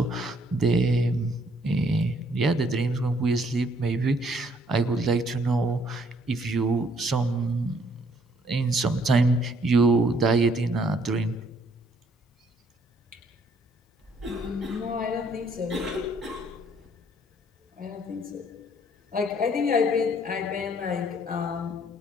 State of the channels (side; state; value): both; normal; correlation 0.65